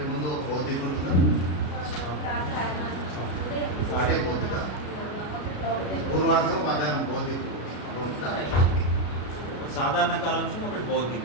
ముందు ఒక బౌద్ధిక ఉంటుందా? అంటే బౌద్ధిక పూర్వార్థం మధ్యాహ్నం బౌద్ధిక ఉంటుందా? సాధారణ కాలాంశం ఒకటి బౌద్ధిక.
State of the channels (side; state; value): right; late; 33 ms